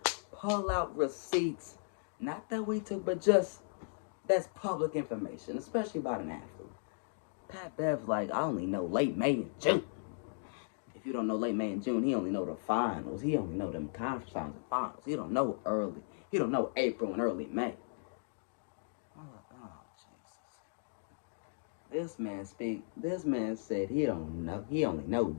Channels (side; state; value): right; silent; digital silence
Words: pull out receipts. Not that we took, but just, that's public information, especially about an athlete. Pat Bev's like, I only know late May and June. If you don't know late May and June, he only know the finals. He only know them conference finals and finals. He don't know early. He don't know April and early May. Oh, Jesus. This man said he don't know. He only know